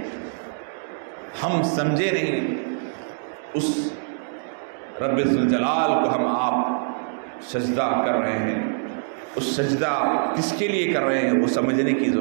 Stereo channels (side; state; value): left; silent; digital silence